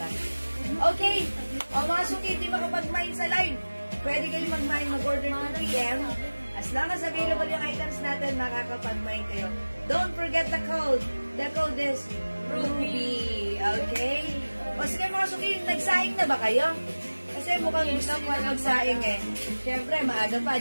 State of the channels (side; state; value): both; inverted; correlation -1.00